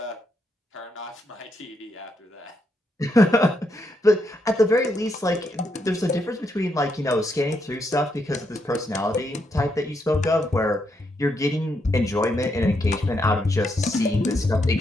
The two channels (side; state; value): both; normal; correlation 0.79